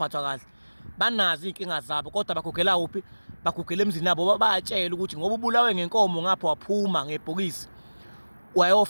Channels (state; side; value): inverted; both; correlation -1.00